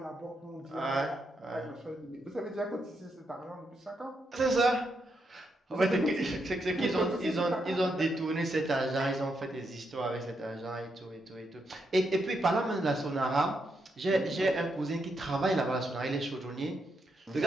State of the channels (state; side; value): normal; both; correlation 0.81